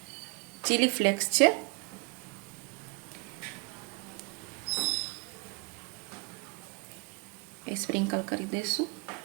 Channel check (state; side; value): quieter; left; 29.7 dB